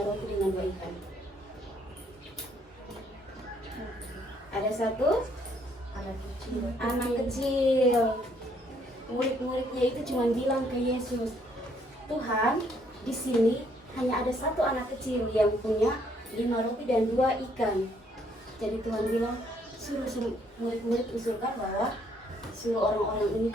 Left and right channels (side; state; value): both; normal; correlation 0.68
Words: roti dengan 2 ikan? Ada satu anak kecil. Murid-muridnya itu cuma bilang ke Yesus, Tuhan, di sini hanya ada satu anak kecil yang punya 5 roti dan 2 ikan. Jadi Tuhan bilang, suruh murid-murid usulkan bahwa suruh orang-orang ini